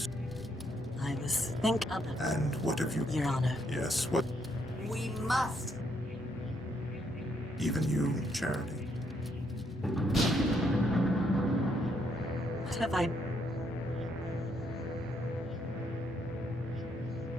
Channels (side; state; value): both; normal; correlation 0.74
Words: I was thinking of it, And what have you... Your Honor. Yes, what... We must. Even you, Charity. What have I...